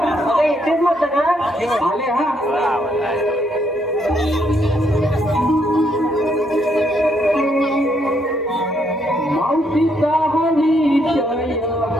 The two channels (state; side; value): normal; both; correlation 0.73